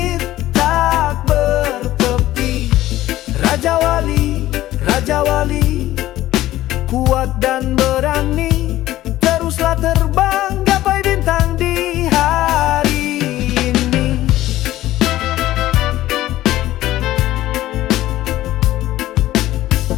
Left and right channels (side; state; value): right; quieter; 14.9 dB